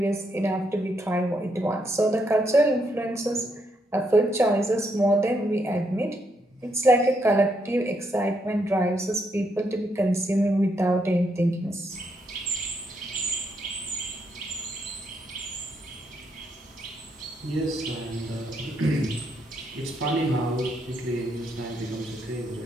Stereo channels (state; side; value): normal; both; correlation 0.77